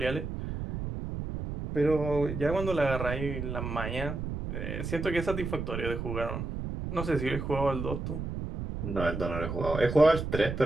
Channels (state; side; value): noise; right; rumble, 5 dB below the sound